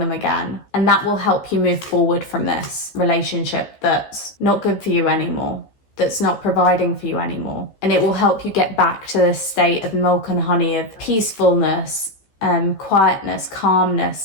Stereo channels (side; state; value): right; late; 14 ms